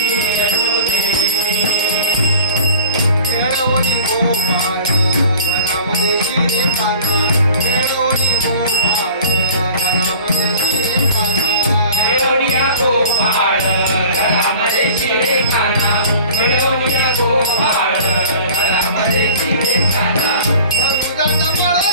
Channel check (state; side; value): inverted; both; correlation -0.42